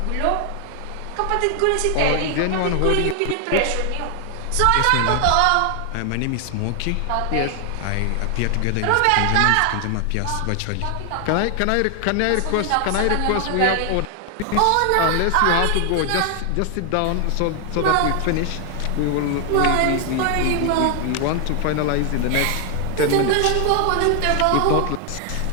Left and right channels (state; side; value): different; both; correlation 0.00